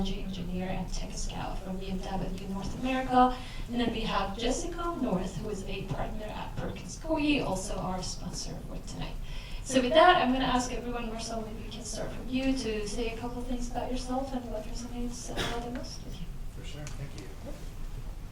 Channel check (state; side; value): identical; both; correlation 1.00